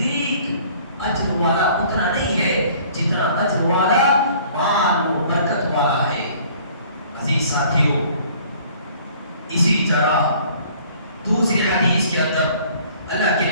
اجر والا اتنا نہیں ہے جتنا اجر والا مال و برکت والا ہے۔ عزیز ساتھیوں، اسی طرح دوسری حدیث کے اندر اللہ کے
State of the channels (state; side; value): inverted; both; correlation -0.54